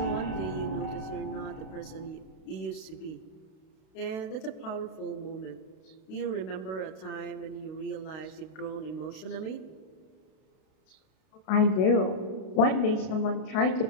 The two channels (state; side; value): late; right; 32 ms